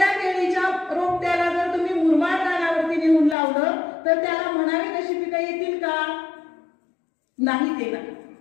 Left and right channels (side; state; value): right; drops out; at 3.4 s